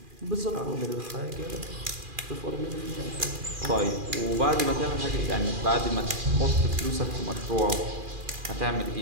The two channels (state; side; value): late; left; 2.4 ms